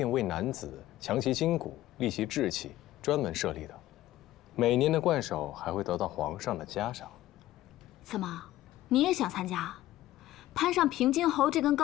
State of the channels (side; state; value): right; quieter; 15.0 dB